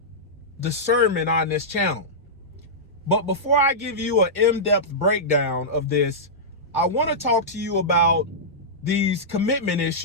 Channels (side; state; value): both; normal; correlation -0.13